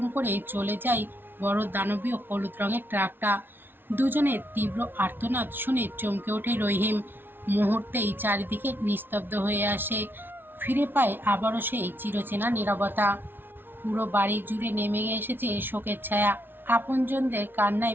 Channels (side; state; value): left; late; 0.10 ms